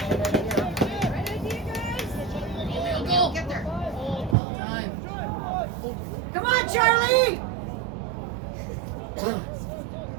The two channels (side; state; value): left; drops out; at 4.4 s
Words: Go. Get there. Well done. Come on, Charlie.